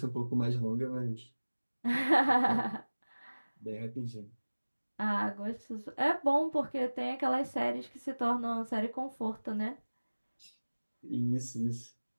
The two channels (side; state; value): both; inverted; correlation -1.00